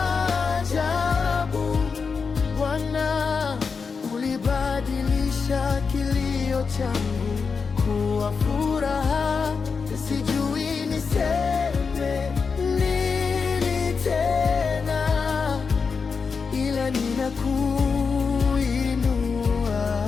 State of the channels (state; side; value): quieter; right; 5.3 dB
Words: Bwana, ulibadilisha kilio changu kuwa furaha. Sijui niseme nini tena, ila ninakuinua,